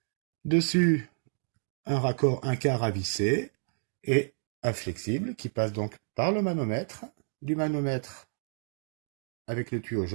Dessus, un raccord 1/4 à visser et un flexible qui passe donc par le manomètre. Du manomètre avec le tuyau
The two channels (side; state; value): left; silent; digital silence